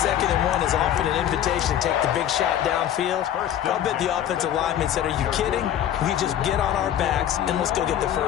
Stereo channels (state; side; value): quieter; right; 10.8 dB